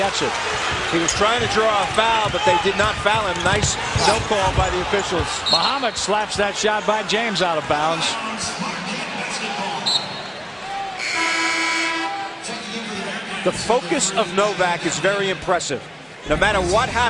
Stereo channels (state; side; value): identical; both; correlation 1.00